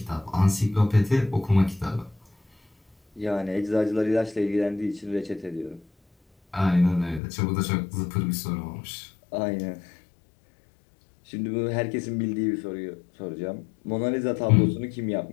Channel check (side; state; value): right; drops out; at 7.2 s